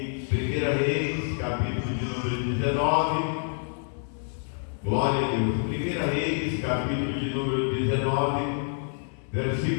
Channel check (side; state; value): right; silent; 60 dB below the other